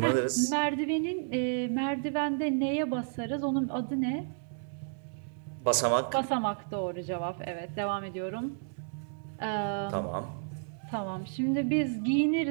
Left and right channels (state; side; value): silent; left; digital silence